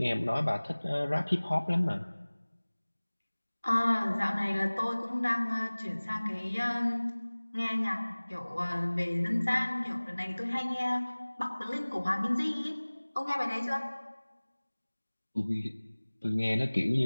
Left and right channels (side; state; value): both; inverted; correlation -1.00